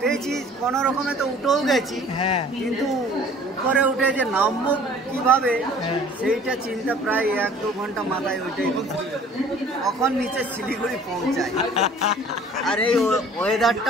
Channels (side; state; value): both; normal; correlation 0.50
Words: কোনো রকমে, তো উঠেও গেছি, হ্যাঁ, কিন্তু উপরে উঠে যে নামবো কিভাবে সেইটা চিন্তা প্রায় 1-2 ঘন্টা মাথায় ওইটাই কখন নিচে শিলিগুড়ি পৌঁছায়। আর এই